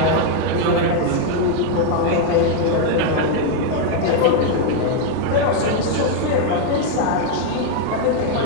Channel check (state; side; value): different; both; correlation 0.00